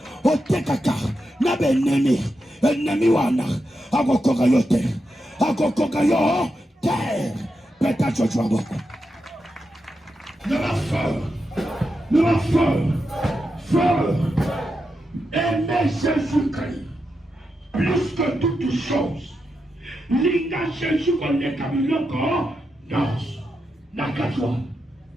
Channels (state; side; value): normal; both; correlation 0.87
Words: Otekaka, nabe ennemi wana, agokogayote, agokogayo, terre, peut-être tu vas voir. De la feu, aimez Jésus-Christ, plus que toutes choses. Linga Jésus qu'on est comme l'encore, non, n'a qu'à toi,